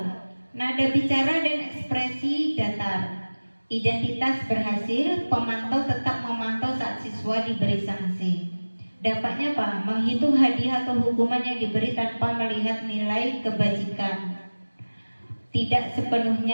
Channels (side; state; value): both; inverted; correlation -1.00